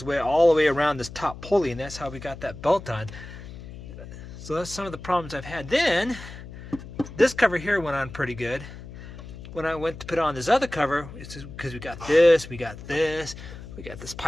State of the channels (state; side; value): noise; left; hum, 13 dB below the sound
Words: way all the way around this top pulley, and that's how we got that belt on. So that's some of the problems I've had. Then this cover here went on pretty good. When I went to put on this other cover, it's because we got this